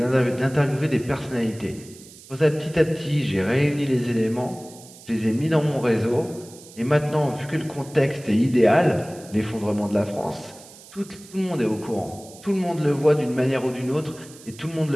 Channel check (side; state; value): right; noise; hiss, 20 dB below the sound